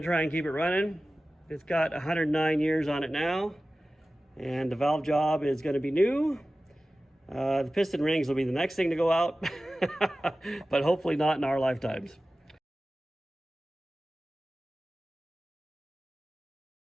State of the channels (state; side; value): normal; both; correlation 0.96